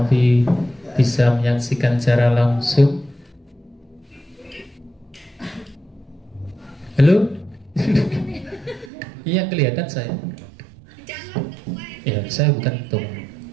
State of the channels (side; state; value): left; drops out; at 8.9 s